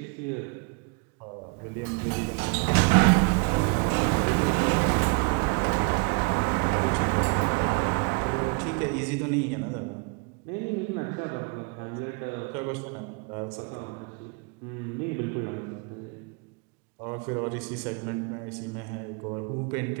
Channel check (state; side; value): quieter; left; 33.8 dB